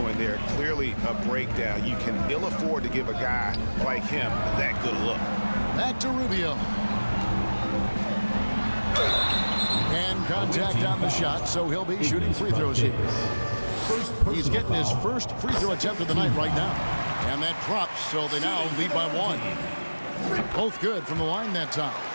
there. Clearly a breakdown. You can ill afford to give a guy like him that good look. Back to Rubio. And contact on the shot, so he'll be shooting free throws here. He's getting his first free throw attempt of the night right now. And that drops, so they now lead by 1. Both good from the line that time.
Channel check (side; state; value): both; inverted; correlation -1.00